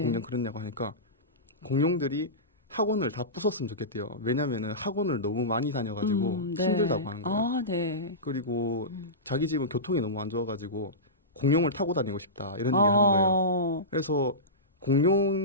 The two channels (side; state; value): both; normal; correlation -0.18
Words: 공룡 그렸냐고 하니까 공룡들이 학원을 다 부쉈으면 좋겠대요. 왜냐면은 학원을 너무 많이 다녀가지고 네. 힘들다고 하는 거예요. 네. 그리고 자기 집은 교통이 너무 안 좋아가지고 공룡을 타고 다니고 싶다 이런 얘기를 하는 거예요. 그래서